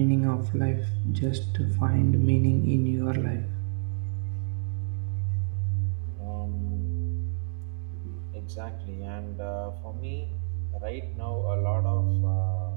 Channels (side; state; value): left; silent; digital silence